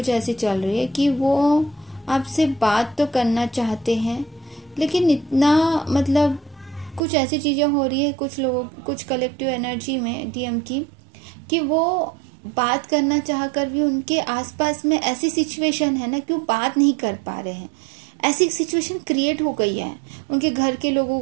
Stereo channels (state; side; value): drops out; left; at 7.0 s